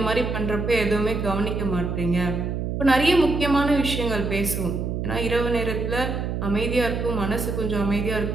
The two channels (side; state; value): right; noise; hum, 2 dB below the sound